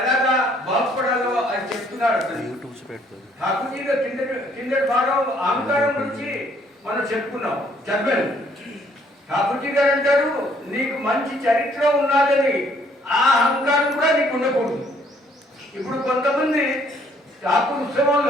ఎలాగా బాగుపడాలో అని చెప్తున్నాడు. ఠాకూర్జీగా కిందటి భాగం అహంకారం గురించి మనం చెప్పుకున్నాం చదివాను. ఠాకూర్జీ గారు అంటారు నీకు మంచి చరిత్ర ఉన్నదని ఆ అహంకారం కూడా నీకు ఉండకూడదు. ఇప్పుడు కొంతమంది ఠాకూర్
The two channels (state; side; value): normal; both; correlation 0.64